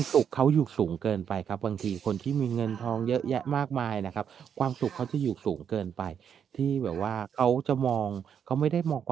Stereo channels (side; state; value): left; quieter; 8.1 dB